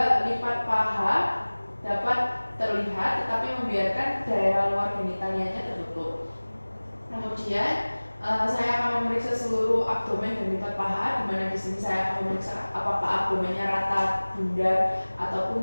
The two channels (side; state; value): both; inverted; correlation -1.00